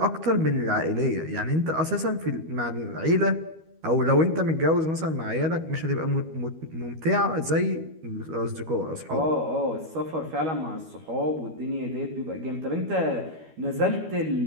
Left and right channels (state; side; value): late; left; 12 ms